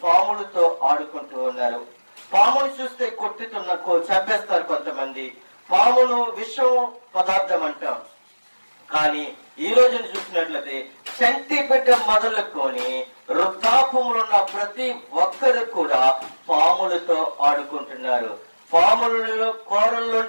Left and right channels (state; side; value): inverted; both; correlation -1.00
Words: పాములతో ఆడుకుంటూ ఉన్నారు. పామును చూస్తే కొట్టుతున్న చంపేస్తారు కొంతమంది. పామును విషం పదార్థం అంటాం. కానీ ఈ రోజుని చూసినట్లయితే చంటి బిడ్డ మొదలుకొని వృద్ధాపంలో ఉన్న ప్రతి ఒక్కరు కూడా పాములతో ఆడుకుంటున్నారు. పాములలో